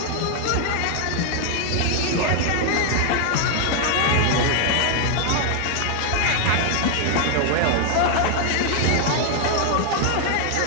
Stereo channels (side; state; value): both; different; correlation 0.00